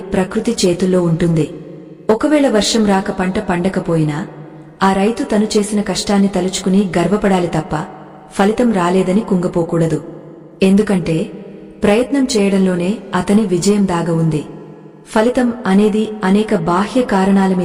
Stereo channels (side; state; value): both; identical; correlation 1.00